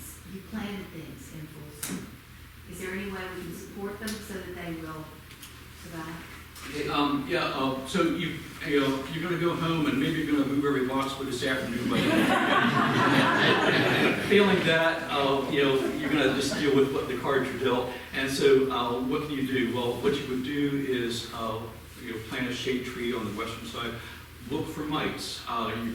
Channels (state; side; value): identical; both; correlation 1.00